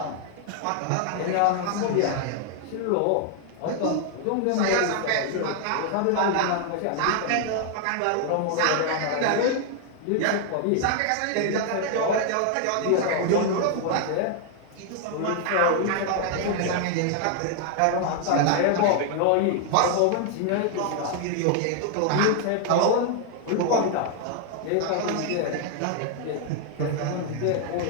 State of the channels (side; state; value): both; different; correlation 0.00